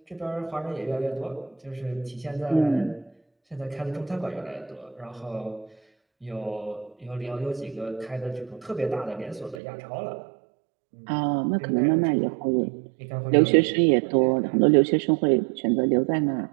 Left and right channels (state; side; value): drops out; left; at 9.6 s